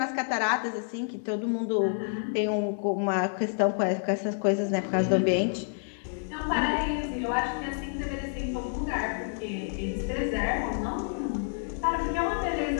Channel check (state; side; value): silent; right; digital silence